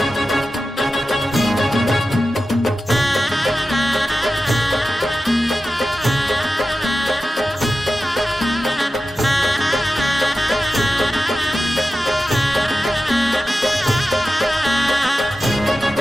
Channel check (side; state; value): both; normal; correlation 0.93